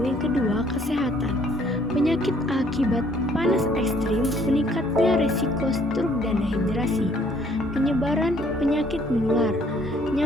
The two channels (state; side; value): normal; both; correlation 0.62